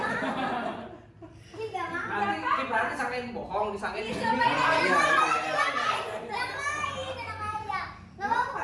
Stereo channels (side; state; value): both; identical; correlation 1.00